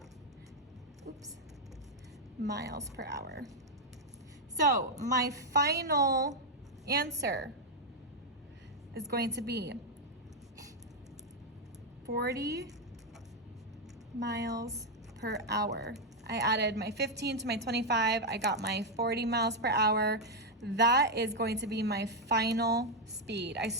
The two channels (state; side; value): normal; both; correlation 0.01